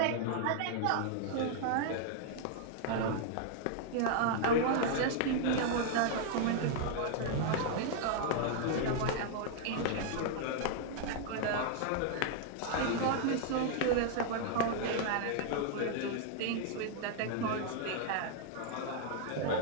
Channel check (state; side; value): different; both; correlation 0.00